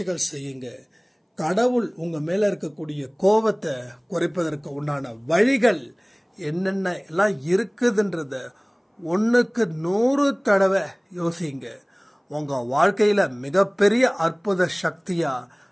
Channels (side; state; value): both; identical; correlation 1.00